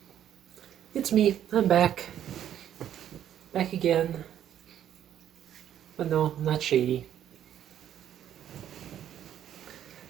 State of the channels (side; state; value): left; quieter; 10.5 dB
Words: it's me. I'm back. Back again. But no, I'm not shady.